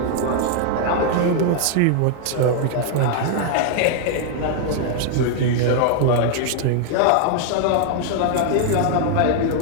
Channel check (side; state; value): both; different; correlation 0.00